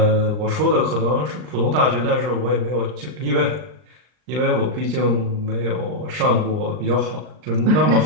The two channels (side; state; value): left; late; 39 ms